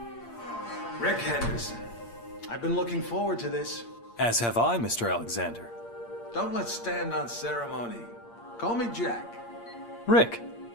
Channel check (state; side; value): late; right; 8.6 ms